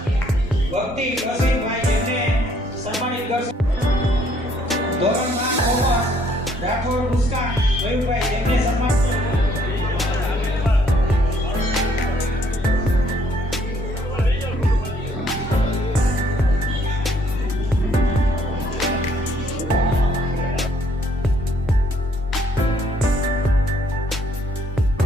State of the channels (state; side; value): normal; both; correlation 0.65